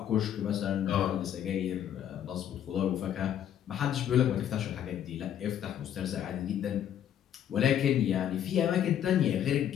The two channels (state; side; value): quieter; right; 10.1 dB